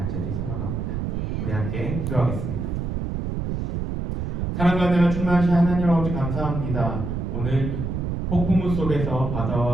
소망합니다. 우리 함께 기도하겠습니다. 사랑과 은혜가 충만하신 하나님 아버지 감사합니다. 오늘 폭풍우 속에서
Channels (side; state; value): right; noise; rumble, 2 dB below the sound